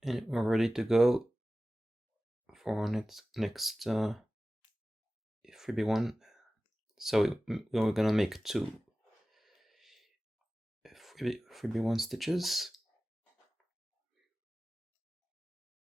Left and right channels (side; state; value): both; normal; correlation 0.96